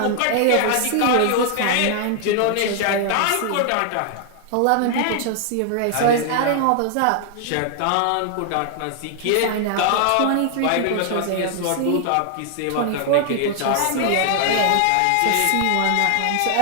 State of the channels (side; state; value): both; different; correlation 0.00